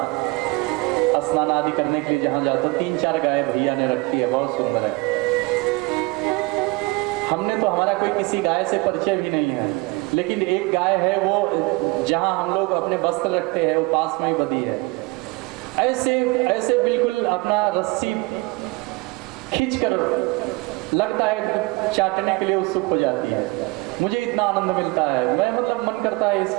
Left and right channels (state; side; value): quieter; left; 25.1 dB